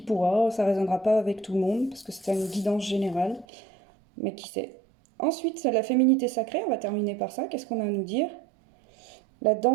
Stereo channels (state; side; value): drops out; left; at 3.5 s